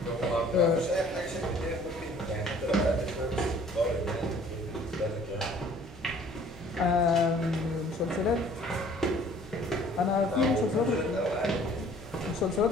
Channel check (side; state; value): both; normal; correlation 0.54